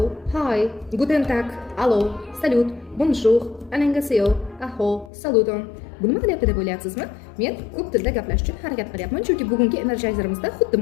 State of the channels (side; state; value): right; drops out; at 5.1 s